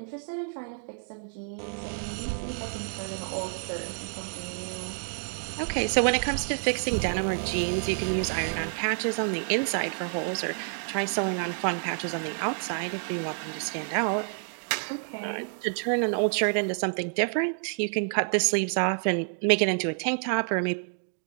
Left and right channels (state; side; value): silent; left; 59 dB below the other